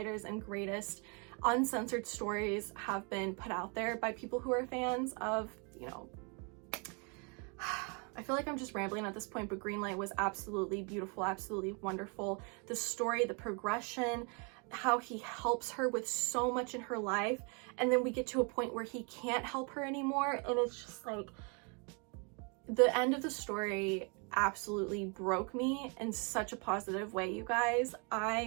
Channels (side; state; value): left; quieter; 35.3 dB